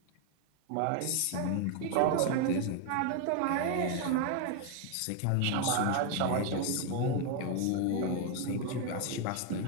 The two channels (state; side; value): different; both; correlation 0.00